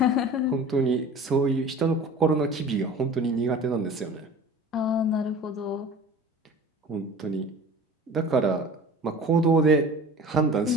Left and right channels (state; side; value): normal; both; correlation 0.41